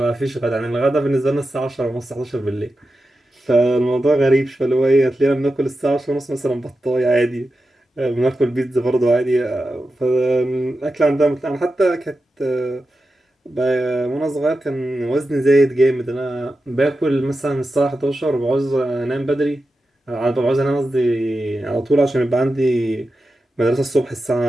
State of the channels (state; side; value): normal; both; correlation 0.91